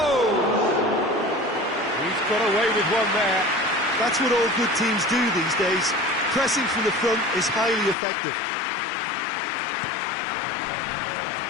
He's got away with one there. That's what all good teams do these days. Pressing from the front is highly effective.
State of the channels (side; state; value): right; drops out; at 8.0 s